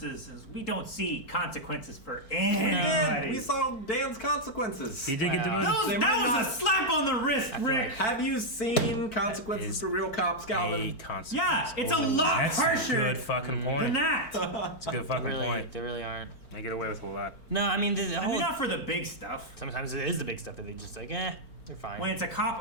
We don't see consequences for We did. anybody. We saw Dan's consequences. He did get Wow. demoted. They That might was not- a slap on the wrist, Rick. Have you seen consequences is for real cops, A Calvin? consequence. Yeah, it's a lot That's a harsher good fucking point. than that. That's a good fucking Really, point. they really aren't. They get away with a lot. No, I mean, the I whole. mean, not for the big stuff. Sometimes it is the big stuff that they just like, they're fine. When it's a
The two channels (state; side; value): late; right; 4.5 ms